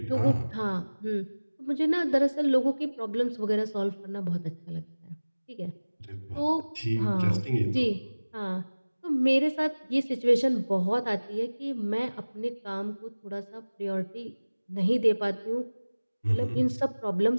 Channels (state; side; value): inverted; both; correlation -1.00